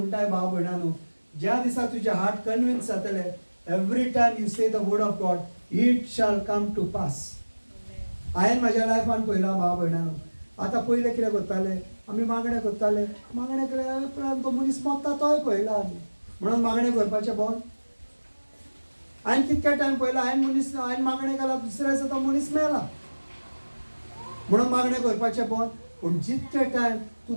भाव भयणानो ज्या दिसा तुजें हार्ट कन्विन्स जातलें every time you say the word of God it shall come to pass. हांवें म्हाज्या लायफान पळयलां भाव भयणानो. आतां पयलें कितें करताले आमी मागणें केल्या उपरांत तो मनीस मरता तोय पळयला आमी म्हणून मागणें करपाचें बंद. हांवें कितके टायम पळयला हांवें मागणें केला दुसऱ्या दिसा तो मनीस मेला म्हणून मागणें करपाचें बंद. पूण जितके टायम तूं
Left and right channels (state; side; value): inverted; both; correlation -1.00